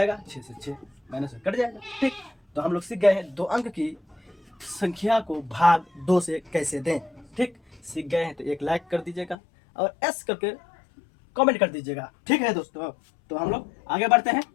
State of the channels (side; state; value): right; drops out; at 9.3 s